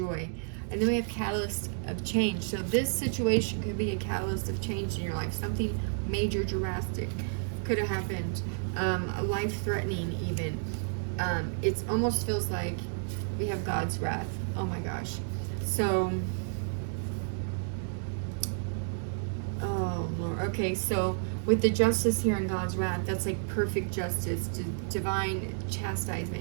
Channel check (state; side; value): silent; left; 57 dB below the other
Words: And then we have catalyst of change. So this situation could be a catalyst of change in your life. Something major, drastic could have happened. Life-threatening even. It almost feels like we have God's wrath. Oh my gosh. So, oh Lord. Okay, so with the justice here in God's wrath, that's like perfect justice, divine